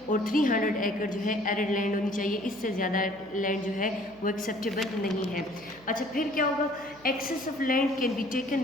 اور 300 ایکڑ جو ہے ایڈڈ لینڈ ہونی چاہیے، اس سے زیادہ لینڈ جو ہے وہ ایکسیپٹیبل نہیں ہے۔ اچھا پھر کیا ہوگا؟ Excess of land can be taken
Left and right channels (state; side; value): noise; right; hum, 26 dB below the sound